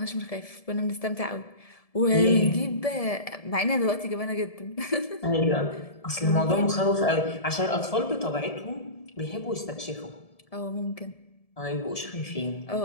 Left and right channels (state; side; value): late; right; 1.7 ms